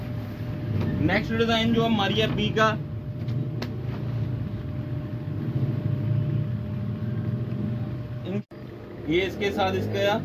नेक्स्ट डिजाइन जो है मारिया बी का, ये इसके साथ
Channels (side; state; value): both; identical; correlation 1.00